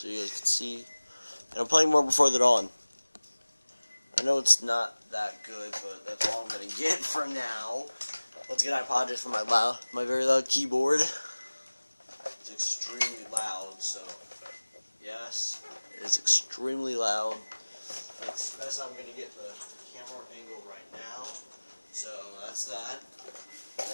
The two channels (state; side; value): inverted; both; correlation -1.00